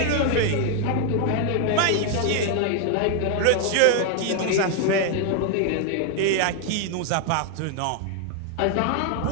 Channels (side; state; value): both; different; correlation 0.01